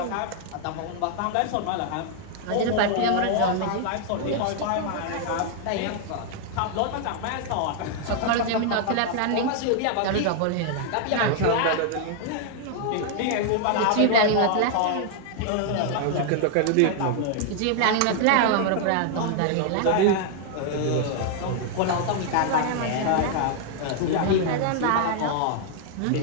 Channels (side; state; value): both; different; correlation 0.00